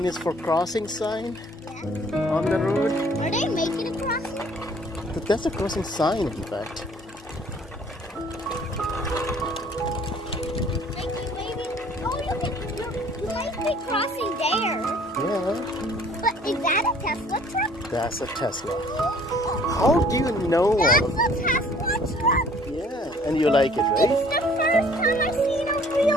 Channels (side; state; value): both; normal; correlation 0.56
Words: is for crossing sign on the road. Are they making a crossing? But that's a crossing sign, in fact. Like you maybe. Oh, you might be crossing there. Yeah, But is that a Tesla truck? that's a Tesla. How do you know all That's of a Tesla truck. Yeah, and you like it, right? It's the first time I've seen a